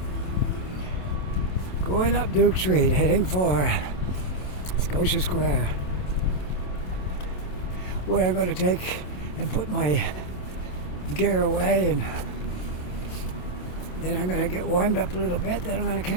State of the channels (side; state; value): right; late; 27 ms